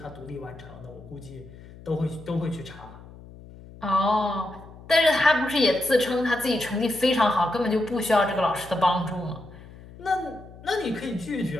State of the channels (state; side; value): noise; left; hum, 19 dB below the sound